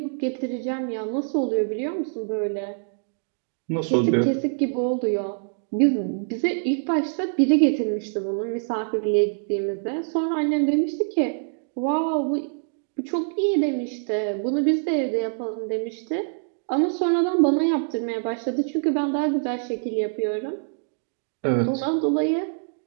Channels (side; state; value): left; silent; digital silence